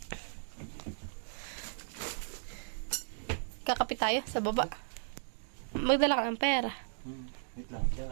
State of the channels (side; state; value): left; silent; digital silence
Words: Kakapit tayo sa baba. Magdala ka ng pera. Wait lang. Diyan